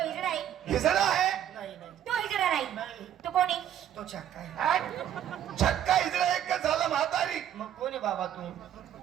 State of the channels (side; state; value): left; quieter; 10.5 dB